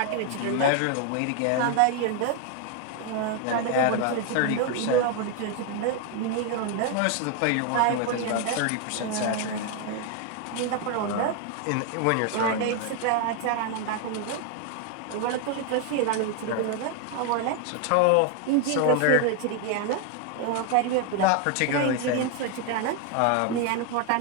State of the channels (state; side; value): different; both; correlation 0.01